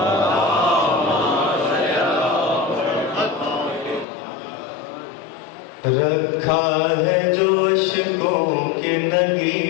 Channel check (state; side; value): drops out; right; at 4.0 s